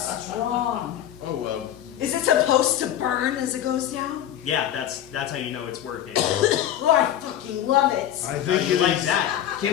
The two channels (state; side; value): quieter; right; 11.2 dB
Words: strong. Oh, well. Is it supposed to burn as it goes down? Yeah, that's how you know it's working. Oh, I fucking love it. I How think you it like is- that?